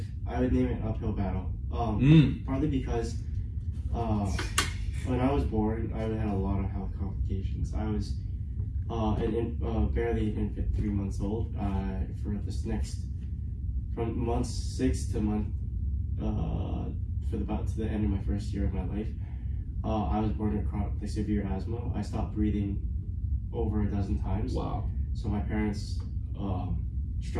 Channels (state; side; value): identical; both; correlation 1.00